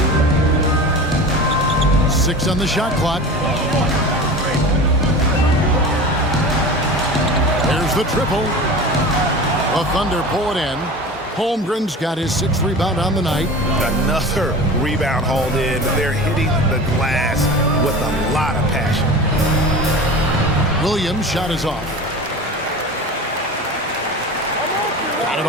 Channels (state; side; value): normal; both; correlation 0.34